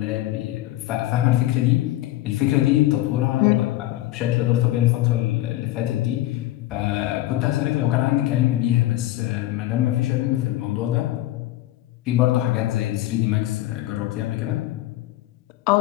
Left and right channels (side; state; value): right; quieter; 15.7 dB